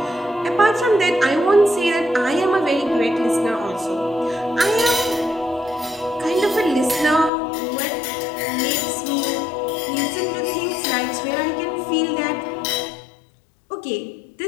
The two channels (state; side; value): drops out; right; at 7.3 s